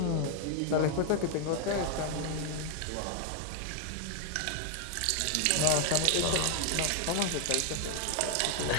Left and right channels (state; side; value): different; both; correlation 0.00